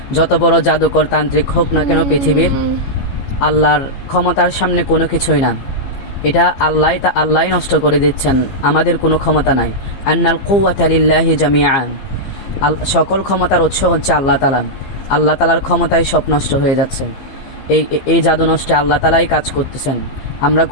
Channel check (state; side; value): late; right; 15 ms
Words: যত বড় জাদুকর তান্ত্রিক হোক না কেন, পৃথিবীর আল্লাহর ক্ষমতার সামনে কোনো কিছুই না। এটা আল্লাহই নষ্ট করে দিচ্ছেন, আমাদের কোনো ক্ষমতা নাই। আন্নাল কুওয়াতা লিল্লাহি জামিআন, সকল ক্ষমতার উৎস হচ্ছে আল্লাহ তাআলা। আল্লাহ তাআলার ক্ষমতায় সব নষ্ট হয়ে যাচ্ছে। এই জাদু নষ্টে আল্লাহ তাআলাই কাজ করতেছেন, আমরা